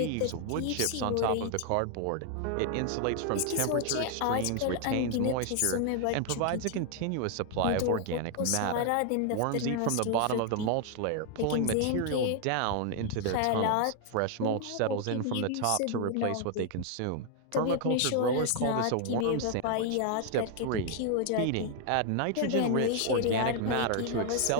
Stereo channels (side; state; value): both; different; correlation 0.00